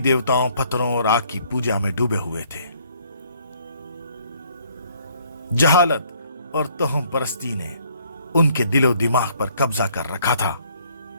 پتھروں اور آگ کی پوجا میں ڈوبے ہوئے تھے۔ جہالت اور توہم پرستی نے ان کے دل و دماغ پر قبضہ کر رکھا تھا۔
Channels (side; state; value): both; inverted; correlation -0.64